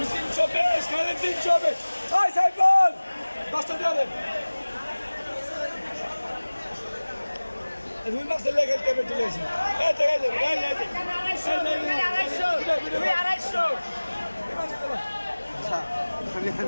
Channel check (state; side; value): inverted; both; correlation -1.00